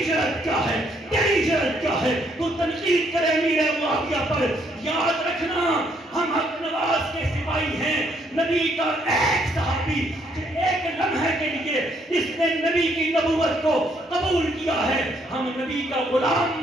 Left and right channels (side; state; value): both; normal; correlation 0.70